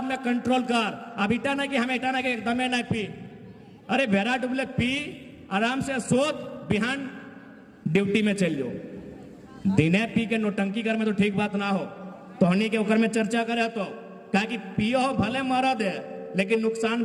में कंट्रोल कर। अब इटा ना कि हम इटा ना कि एकदम नहीं पी, अरे भेरा डुबले पी, आराम से सोच, बिहान ड्यूटी में चल जाओ। दिने पी के नोटंकी कर में तो ठीक बात ना हो, तोहनी के ऊपर में चर्चा करे तो कहा कि पियो हो भले मरा दे, लेकिन नुकसान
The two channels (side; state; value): both; identical; correlation 1.00